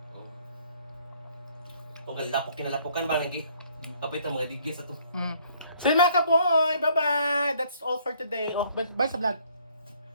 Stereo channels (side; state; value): both; inverted; correlation -0.62